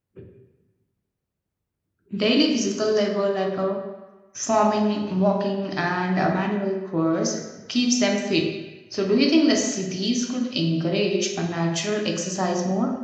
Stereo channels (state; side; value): identical; both; correlation 1.00